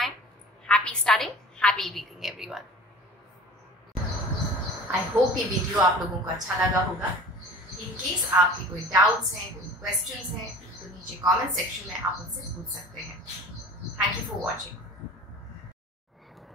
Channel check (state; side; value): normal; both; correlation 0.42